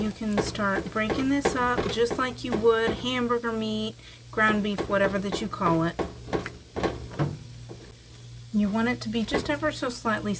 can start breaking this up just like you would hamburger meat, ground beef, whatever that you call it. You want it to be just ever so slightly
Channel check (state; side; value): identical; both; correlation 1.00